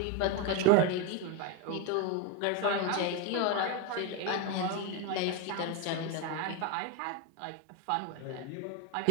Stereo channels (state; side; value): different; both; correlation 0.02